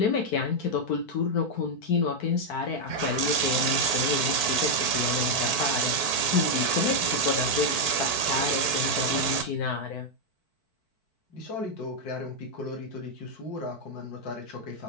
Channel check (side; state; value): right; late; 4.5 ms